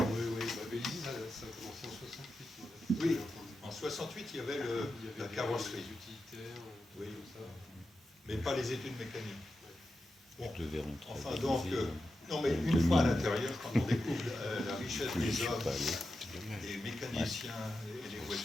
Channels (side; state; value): both; normal; correlation 0.90